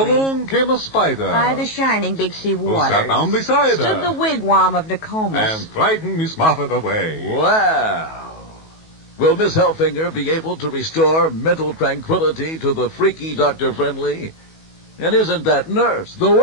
came a spider. By the shining big sea who waters. sat down beside Stood her. the wigwam of Nokomis. And frightened Miss Muffet away. Wow. Will Miss Helfinger be able to restore mental tranquility to the freaky Dr. Friendly? And isn't that nurse the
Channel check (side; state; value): right; late; 19 ms